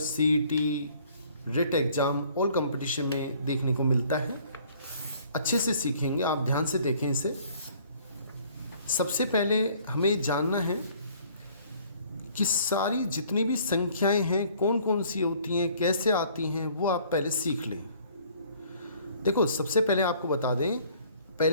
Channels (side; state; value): both; inverted; correlation -0.57